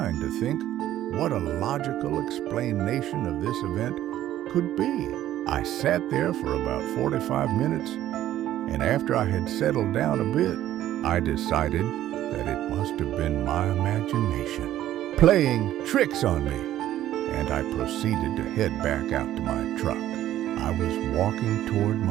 to think what a logical explanation of this event could be. I sat there for about 45 minutes, and after I had settled down a bit, I decided that it must have been my imagination playing tricks on me, and I proceeded to head back out to my truck. I was walking toward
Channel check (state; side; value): quieter; left; 12.9 dB